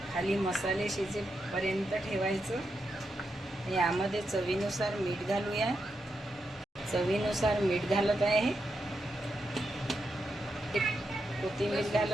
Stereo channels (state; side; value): normal; both; correlation 0.85